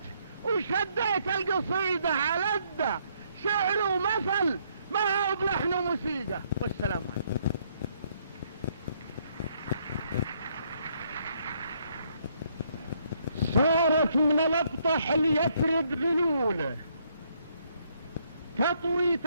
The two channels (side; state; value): both; inverted; correlation -0.70